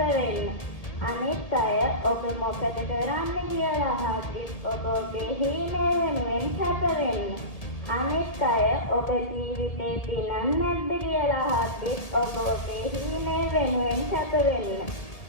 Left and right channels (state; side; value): late; right; 1.8 ms